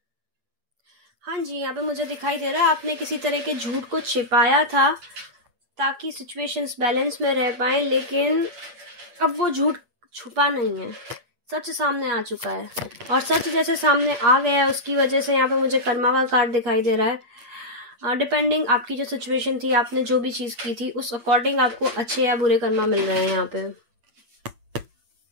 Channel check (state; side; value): late; left; 8.5 ms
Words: हाँ जी, यहाँ पे मुझे दिखाई दे रहा है आपने किसी तरह के झूठ को छिपाया था ताकि सिचुएशंस बैलेंस में रह पाए, लेकिन अब वो झूठ छुपा नहीं है, सच सामने आ चुका है, और सच जैसे सामने आ गया है उसकी वजह से यहाँ पे मुझे कर्मा का कार्ड दिखाई दे रहा है। डिपेंडिंग आपकी जो सिचुएशन थी, आपने जो भी चीज़ की थी, उस अकॉर्डिंग आपको अच्छे या बुरे कर्मा मिल रहे हैं यहाँ पे।